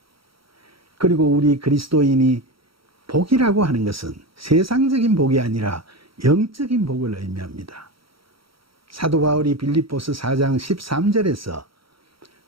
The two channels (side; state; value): left; late; 0.75 ms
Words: 그리고 우리 그리스도인이 복이라고 하는 것은 세상적인 복이 아니라 영적인 복을 의미합니다. 사도 바울이 빌립보서 4장 13절에서